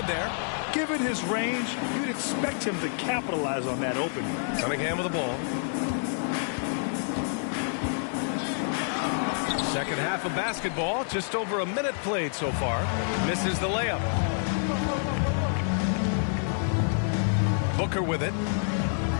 there. Given his range, you'd expect him to capitalize on that opening. Cunningham with the ball. Second half of basketball, just over a minute played so far. Misses the layup. Booker with it.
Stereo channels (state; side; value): silent; right; digital silence